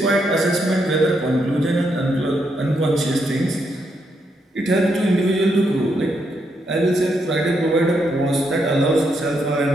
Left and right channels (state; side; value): normal; both; correlation 0.79